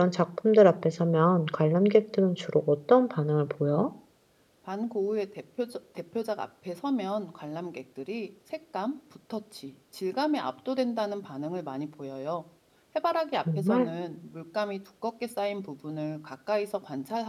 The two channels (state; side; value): identical; both; correlation 1.00